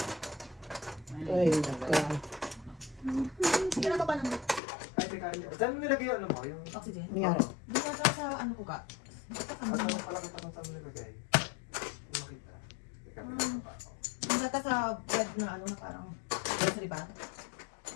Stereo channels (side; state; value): right; drops out; at 4.6 s